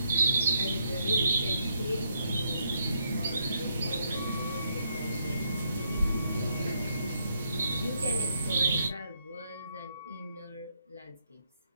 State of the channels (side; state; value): both; inverted; correlation -0.76